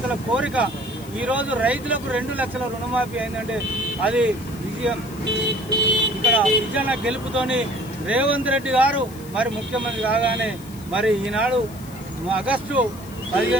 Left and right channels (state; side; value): noise; left; hiss, 20 dB below the sound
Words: కోరిక ఈరోజు రైతులకు 2 లక్షల రుణమాఫీ అయిందంటే అది విజయం. ఇక్కడ విజయన గెలుపుతోని రేవంత్ రెడ్డి గారు మరి ముఖ్యమంత్రి కాగానే మరి ఈనాడు ఆగస్టు